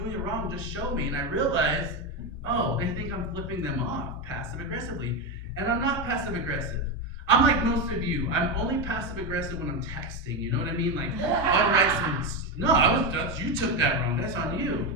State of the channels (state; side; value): normal; both; correlation 0.12